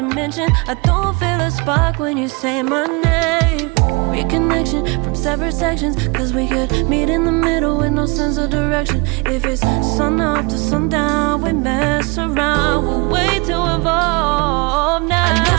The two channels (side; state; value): left; quieter; 29.3 dB